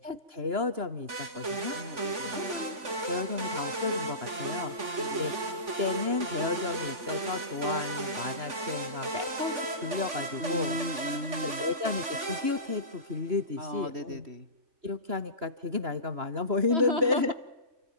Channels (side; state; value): left; late; 3.4 ms